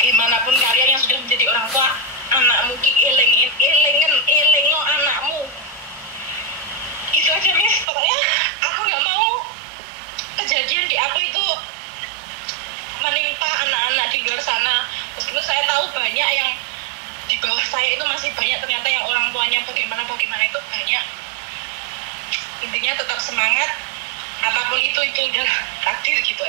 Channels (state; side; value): drops out; left; at 7.9 s